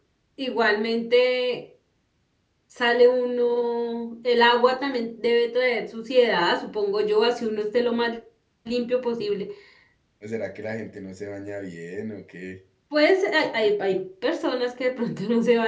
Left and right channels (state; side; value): identical; both; correlation 1.00